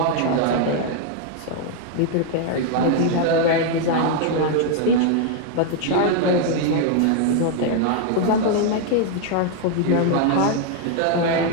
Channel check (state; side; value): different; both; correlation 0.00